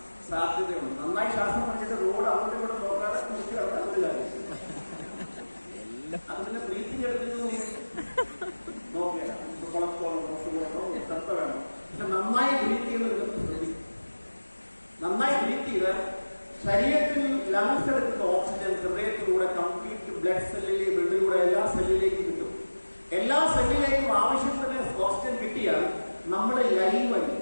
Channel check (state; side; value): inverted; both; correlation -1.00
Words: സാധ്യതയുണ്ട്. നന്നായി ശ്വാസം പഠിച്ചിട്ട് റോഡ് അങ്ങോട്ടും കൂടെ നോക്കാതെ കുറിച്ച് കിടക്കാൻ ഒരു കാര്യം. അത് പിന്നെ ബ്രീത്തിങ് എടുക്കുന്നത് നോക്കിയാൽ കൊളസ്ട്രോളോ ശ്രദ്ധ വേണം. പക്ഷെ നന്നായി ബ്രീത്ത് ചെയ്യുന്നത് ശ്രദ്ധിക്കും. നന്നായി ബ്രീത്ത് ചെയ്താൽ ശരീരത്തിൽ ലങ്സ് എടുക്കുന്ന ഓക്സിജൻ ഹൃദയത്തിലൂടെ കംപ്ലീറ്റ് ബ്ലഡിലൂടെ എല്ലാ സെല്ലിലേക്കും കിട്ടും. എല്ലാ സെല്ലിലേക്കും ആവശ്യത്തിന് ഓക്സിജൻ കിട്ടിയാൽ നമ്മൾ ലൈവായി.